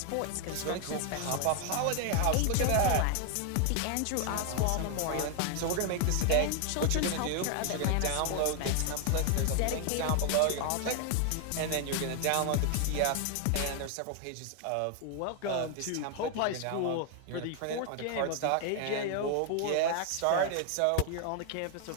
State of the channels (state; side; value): different; both; correlation 0.00